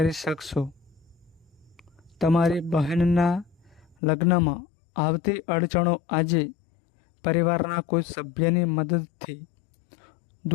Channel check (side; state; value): right; drops out; at 4.0 s